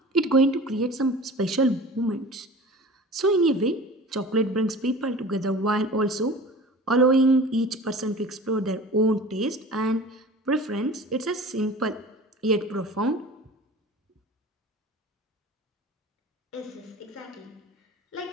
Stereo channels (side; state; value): both; normal; correlation 0.40